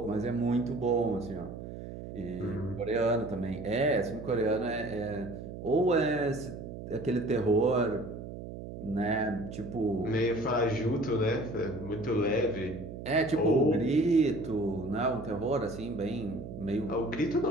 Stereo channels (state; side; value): noise; right; hum, 10 dB below the sound